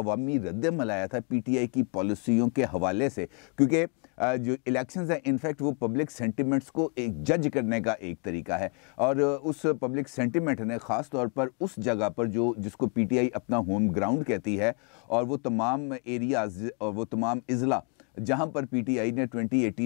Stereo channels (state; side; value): quieter; right; 37.0 dB